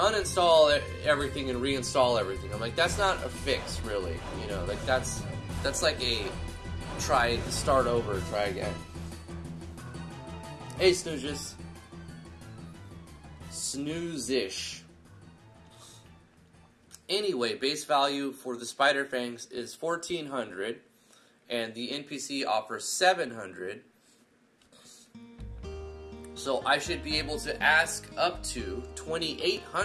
everything and reinstall everything. I'm like, that's not a fix, really. You know, like that's like a start over, try again. Hey, Snoozes. Snoozish. Anyway, base value for the Spider Fangs is 1,400, and the NPC offers 700. So I should be able to ask up to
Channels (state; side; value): identical; both; correlation 1.00